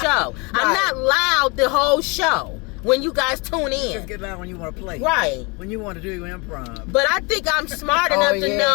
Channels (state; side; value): quieter; right; 28.9 dB